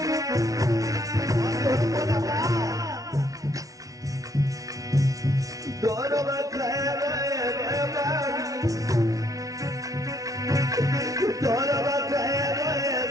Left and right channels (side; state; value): left; late; 0.17 ms